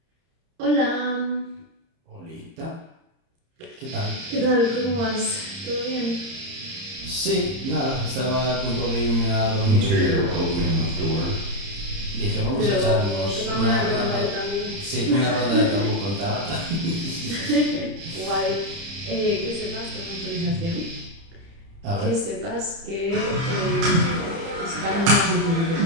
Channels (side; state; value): left; late; 30 ms